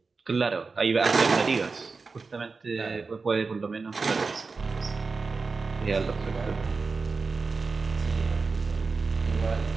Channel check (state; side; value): quieter; left; 4.3 dB